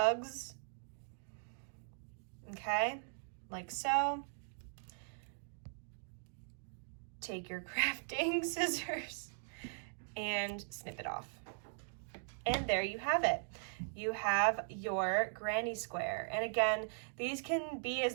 Okay, like so. Take your crafting scissors and snip it off. And there you have it. You have your granny square. And again, these can be as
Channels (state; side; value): silent; left; digital silence